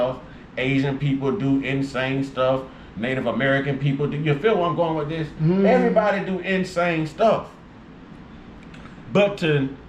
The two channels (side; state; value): both; identical; correlation 1.00